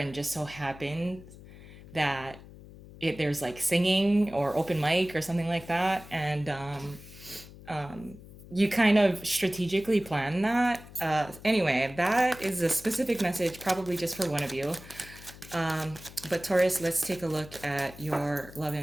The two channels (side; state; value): left; noise; hum, 18 dB below the sound